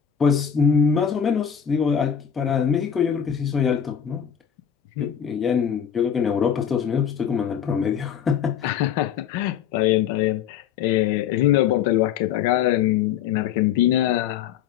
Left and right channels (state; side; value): quieter; right; 8.5 dB